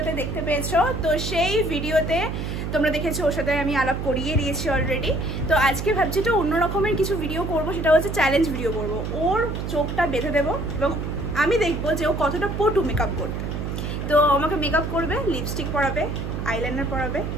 দেখতে পেয়েছো। তো সেই ভিডিওতে তোমরা দেখেছো ওর সাথে আমি আলাপ করিয়ে দিয়েছি অলরেডি। তো আজকে ভাবছি তো অন্য রকমের কিছু ভিডিও করব, সেটা হচ্ছে চ্যালেঞ্জ ভিডিও করব। ওর চোখটা বেঁধে দেবো এবং আমি দেখবো যে ও কতটা পটু মেকআপ করতে। তো আমাকে মেকআপ করবে, লিপস্টিক পরাবে, আইলাইনার পরাবে,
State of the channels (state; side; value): noise; right; hum, 4 dB below the sound